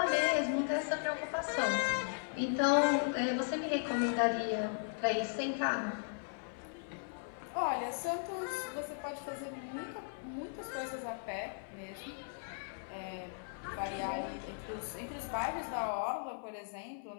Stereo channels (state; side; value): silent; right; 53 dB below the other